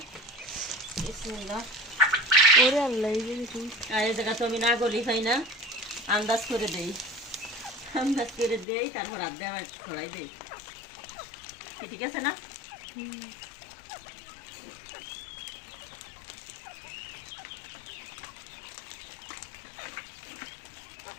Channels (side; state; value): right; drops out; at 8.7 s